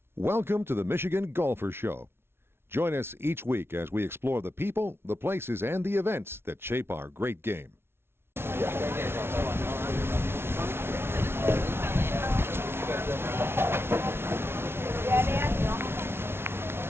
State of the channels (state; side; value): late; left; 0.12 ms